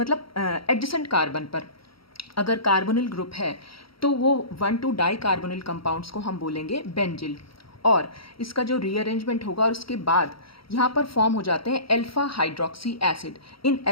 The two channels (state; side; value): late; right; 0.75 ms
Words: एडजेसेंट कार्बन पर अगर कार्बोनिल ग्रुप है तो वो 1,2 डाई कार्बोनिल कंपाउंड्स को हम बोलेंगे बेंजिल। और इसका जो रीअरेंजमेंट होगा और उसके बाद यहाँ पर फॉर्म हो जाते हैं अल्फा हाइड्रोक्सी एसिड। इन